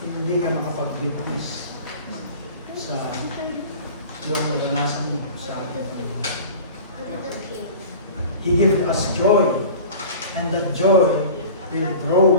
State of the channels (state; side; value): inverted; both; correlation -0.40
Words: hindi ka makapag-witness sa yung naranasan mo sa ating Panginoon. He gives us joy, and that joy will